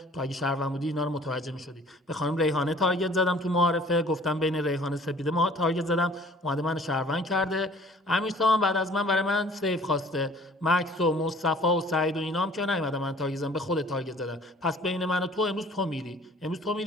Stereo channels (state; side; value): normal; both; correlation 0.52